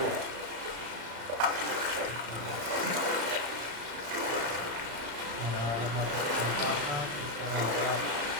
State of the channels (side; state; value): left; late; 35 ms